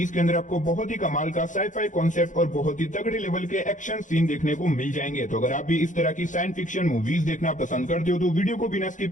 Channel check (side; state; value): right; late; 0.37 ms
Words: के अंदर आपको बहुत ही कमाल का साई-फाई कॉन्सेप्ट और बहुत ही तगड़े लेवल के एक्शन सीन देखने को मिल जाएंगे। तो अगर आप भी इस तरह की साइंस फिक्शन मूवीज देखना पसंद करते हो तो वीडियो को बिना